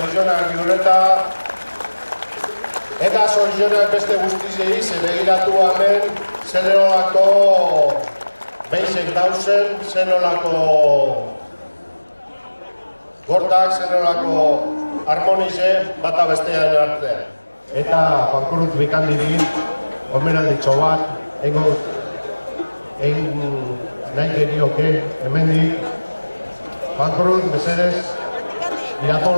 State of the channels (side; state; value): both; inverted; correlation -1.00